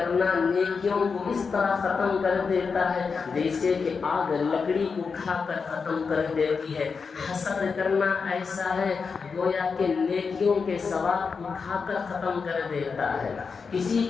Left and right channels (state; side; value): quieter; right; 5.2 dB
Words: نیکیوں کو اس طرح ختم کر دیتا ہے جیسے کہ آگ لکڑی کو کھا کر ختم کر دیتی ہے۔ حسد کرنا ایسا ہے گویا کہ نیکیوں کے ثواب کو کھا کر ختم کر دیتا ہے۔ کسی